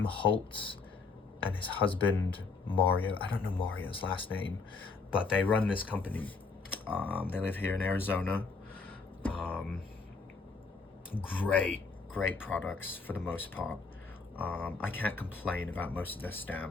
Holtz and his husband Mario. I don't know Mario's last name, but they run this company. They live here in Arizona. Great products for the most part. I can't complain about most of their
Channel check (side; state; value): right; quieter; 4.4 dB